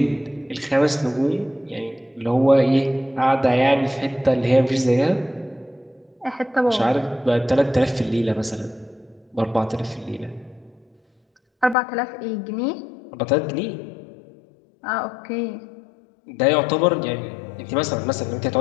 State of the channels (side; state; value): right; drops out; at 11.8 s